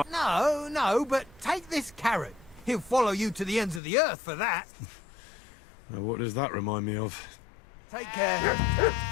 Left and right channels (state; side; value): drops out; right; at 3.8 s